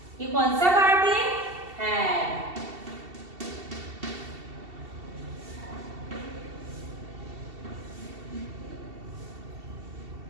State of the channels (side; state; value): left; late; 2.7 ms